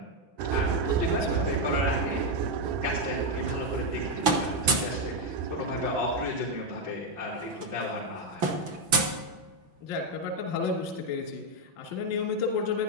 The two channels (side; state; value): left; late; 6.1 ms